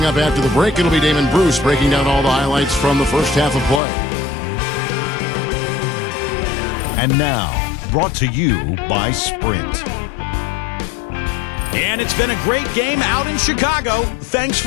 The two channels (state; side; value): drops out; right; at 3.8 s